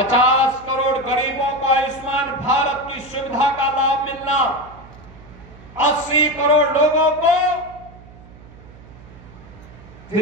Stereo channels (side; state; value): right; noise; hum, 20 dB below the sound